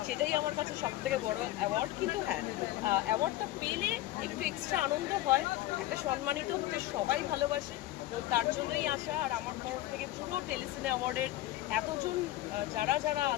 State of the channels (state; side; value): quieter; right; 15.7 dB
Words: সেটাই আমার কাছে সব থেকে বড় অ্যাওয়ার্ড। কিন্তু হ্যাঁ, অ্যাওয়ার্ডটা পেলে একটু এক্সট্রা আনন্দ হয়, একটা সম্মানিত হতে সবাই ভালোবাসে, তো তার জন্যই আসা। আর আমার তরফ থেকে পুরো টেলিসিনে অ্যাওয়ার্ডের এতজন যারা